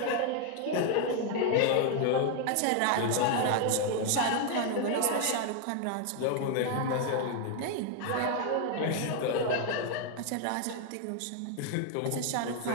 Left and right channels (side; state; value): both; different; correlation 0.00